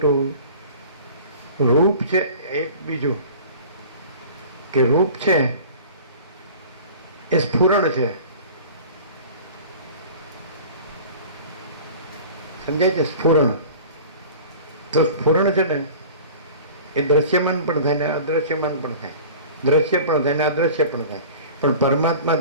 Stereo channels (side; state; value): both; inverted; correlation -0.41